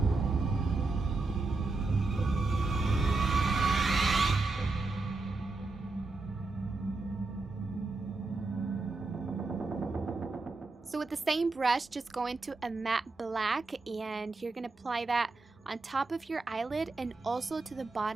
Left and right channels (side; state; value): left; quieter; 3.6 dB